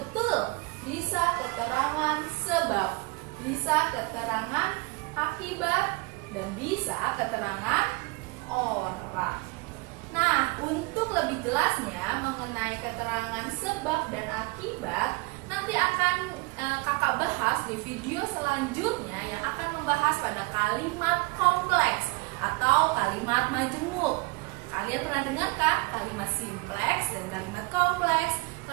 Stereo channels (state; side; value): quieter; left; 26.1 dB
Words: Bisa keterangan sebab, bisa keterangan akibat, dan bisa keterangan orang. Nah, untuk lebih jelasnya mengenai keterangan sebab dan akibat, nanti akan kakak bahas di video selanjutnya yang akan membahas pada kalimat kompleks atau kalimat majemuk. Kalian pernah dengar kan kalimat simpleks dan kalimat kompleks?